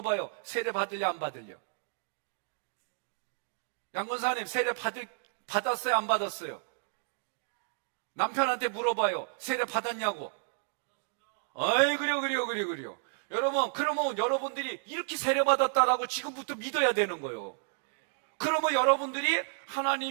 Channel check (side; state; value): left; silent; digital silence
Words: 세례 받을려 안 받을려? 양권사님, 세례 받았어요 안 받았어요? 남편한테 물어봐요. 세례 받았냐고. 어이, 그래요. 여러분, 그러면 여러분들이 이렇게 세례 받았다라고 지금부터 믿어야 되는 거예요. 그러면 여러분들이,